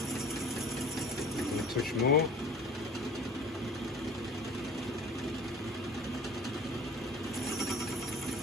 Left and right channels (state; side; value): normal; both; correlation 0.45